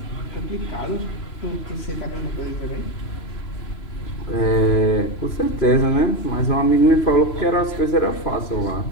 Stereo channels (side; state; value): right; late; 3.0 ms